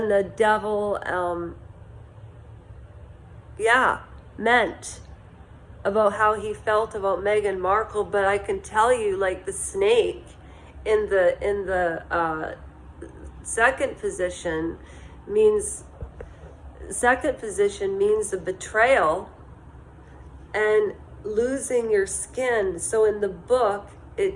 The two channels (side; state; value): both; identical; correlation 1.00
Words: devil meant about how he felt about Meghan Markle. But I can tell you, like, the snake in the second position means the betrayal and losing your skin. So in the book